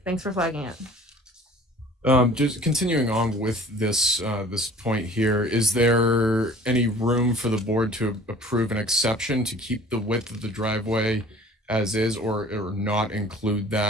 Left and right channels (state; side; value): normal; both; correlation 0.48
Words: Thanks for flagging it. Just continuing on with this this point here, is there any room for the board to approve an exception to keep the width of the driveway as is, or not include